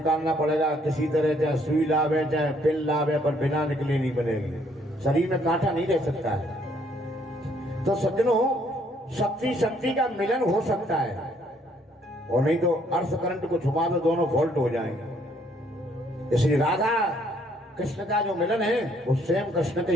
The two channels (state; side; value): normal; both; correlation 0.66